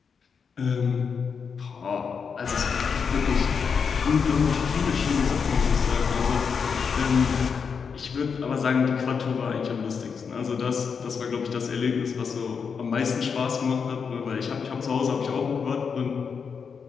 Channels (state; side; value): quieter; right; 6.1 dB